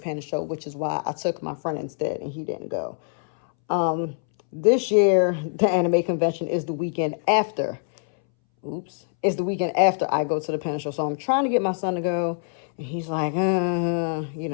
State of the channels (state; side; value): silent; right; 62 dB below the other